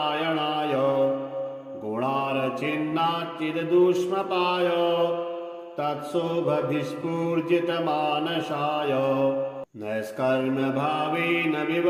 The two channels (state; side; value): identical; both; correlation 1.00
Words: गुणार्चिन्नाच्चिददुष्मपाय तत्शोभभिस्फूर्जितमानसाय नैष्कर्म्यभावेन